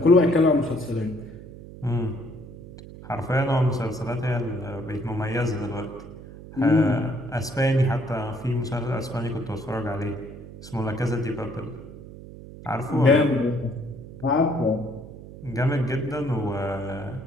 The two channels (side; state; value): right; noise; hum, 15 dB below the sound